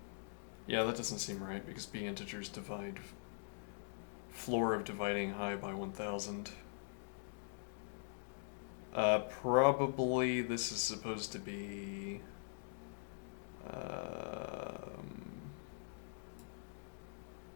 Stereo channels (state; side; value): silent; right; digital silence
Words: Yeah, that doesn't seem right because B integers divide floor of dividing high by 1000. Probably this is supposed to be